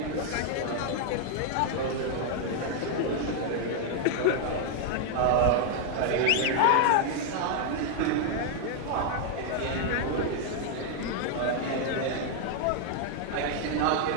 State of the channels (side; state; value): both; different; correlation 0.00